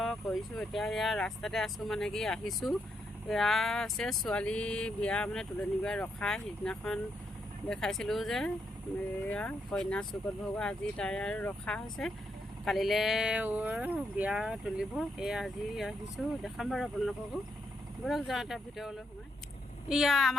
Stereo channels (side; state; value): both; normal; correlation 0.79